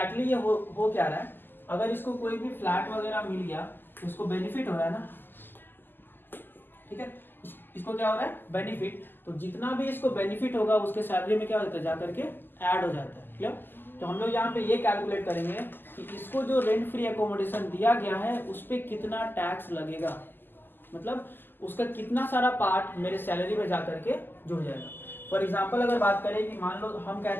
ये हो क्या रहा है, अगर इसको कोई भी फ्लैट वगैरह मिल गया तो उसको बेनिफिट हो रहा है ना, ठीक है, इसको क्या हो रहा है, बेनिफिट। तो जितना भी इसको बेनिफिट होगा उसके सैलरी में क्या होता है, जाकर के ऐड हो जाता है, क्लियर। तो हम लोग यहाँ पे ये कैलकुलेट करेंगे कि इसको जो रेंट फ्री एकोमोडेशन दिया गया है उस पर कितना टैक्स लगेगा, मतलब उसका कितना सारा पार्ट मेरे सैलरी में जाकर के जुड़ जाएगा। फॉर एग्जाम्पल अगर बात करें कि मान लो हम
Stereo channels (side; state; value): right; late; 0.093 ms